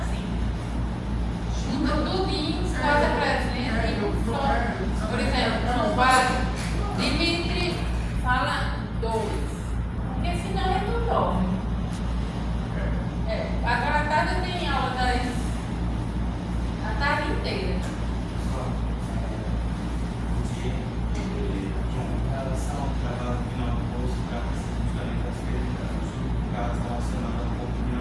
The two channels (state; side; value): identical; both; correlation 1.00